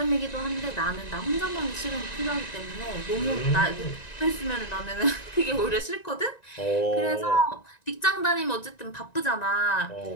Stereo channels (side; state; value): right; late; 1.9 ms